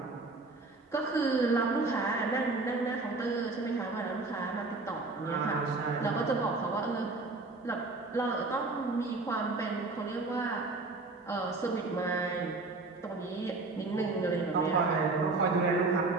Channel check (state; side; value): quieter; left; 3.5 dB